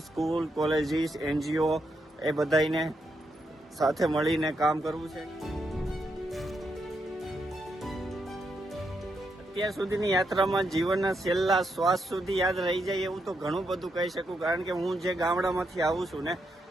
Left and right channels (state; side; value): normal; both; correlation 0.81